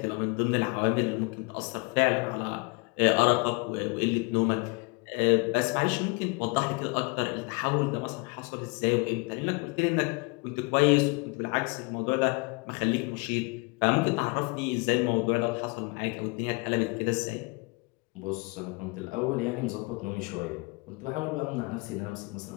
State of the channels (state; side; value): quieter; right; 28.7 dB